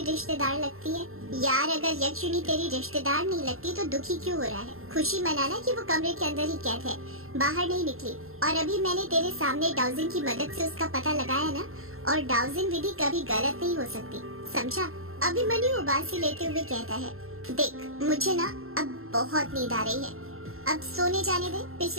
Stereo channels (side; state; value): left; late; 0.62 ms